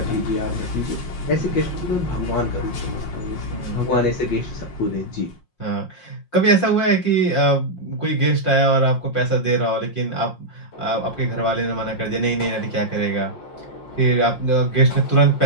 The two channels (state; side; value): late; right; 5.6 ms